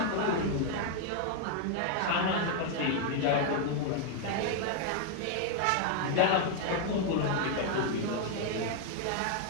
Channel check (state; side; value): different; both; correlation 0.00